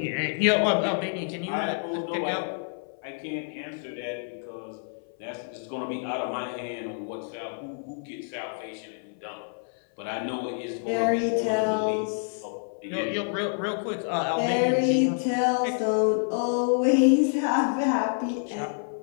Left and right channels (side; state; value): right; silent; 59 dB below the other